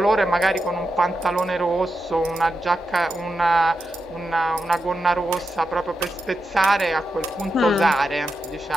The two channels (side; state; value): both; normal; correlation 0.88